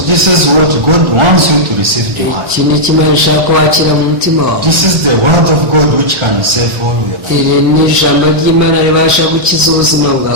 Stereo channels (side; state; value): left; late; 1.4 ms